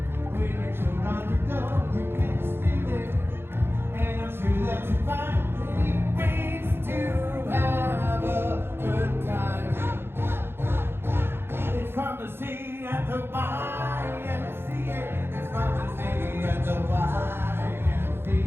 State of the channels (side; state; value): left; late; 0.11 ms